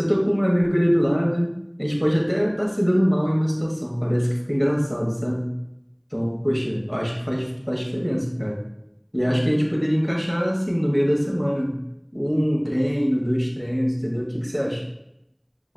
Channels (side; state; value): both; identical; correlation 1.00